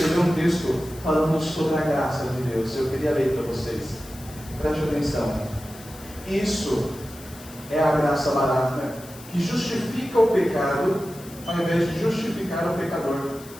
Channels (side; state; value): left; noise; hiss, 19 dB below the sound